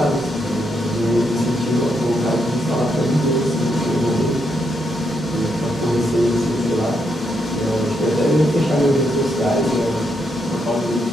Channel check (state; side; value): normal; both; correlation 0.79